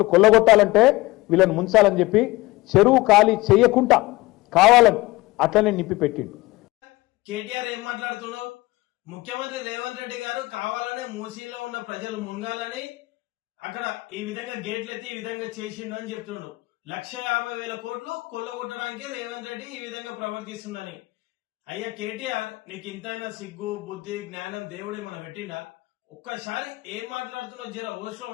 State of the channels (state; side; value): quieter; right; 20.3 dB